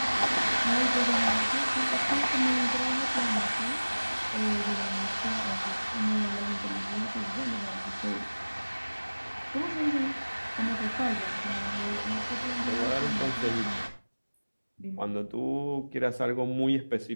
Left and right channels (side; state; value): both; inverted; correlation -1.00